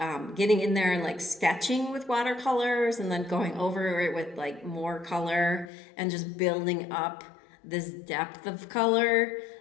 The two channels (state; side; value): drops out; right; at 5.7 s